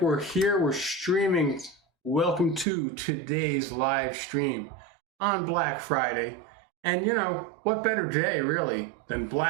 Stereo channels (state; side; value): drops out; left; at 2.7 s